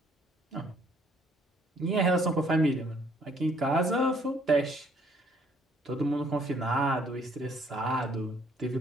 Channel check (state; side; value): normal; both; correlation 0.63